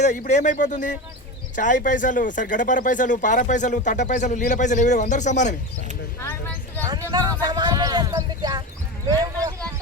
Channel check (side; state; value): both; normal; correlation 0.24